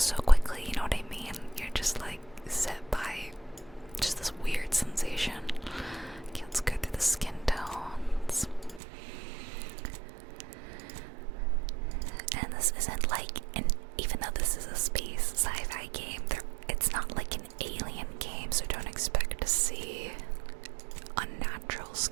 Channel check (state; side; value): drops out; left; at 8.8 s